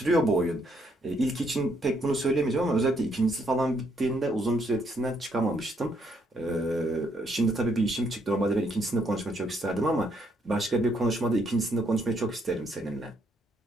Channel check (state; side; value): normal; both; correlation 0.72